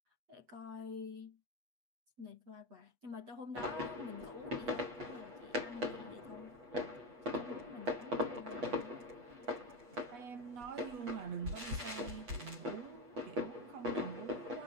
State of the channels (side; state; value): left; late; 8.2 ms